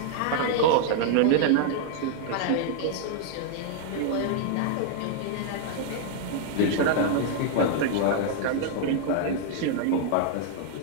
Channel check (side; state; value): both; different; correlation -0.01